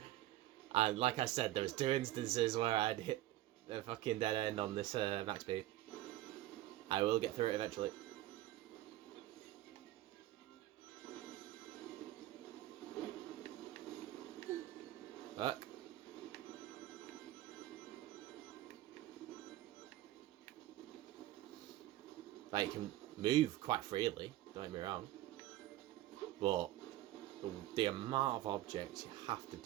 And like I said, there was 2 instances where I'd hit the fucking dead end on this max speed. I will get through it eventually. Look. Like, you can move quite freely, don't get me wrong. But the amount of objects you have to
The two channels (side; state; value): left; quieter; 15.4 dB